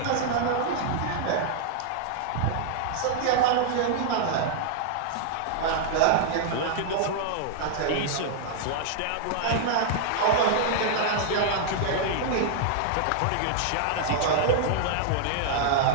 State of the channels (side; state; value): both; different; correlation -0.01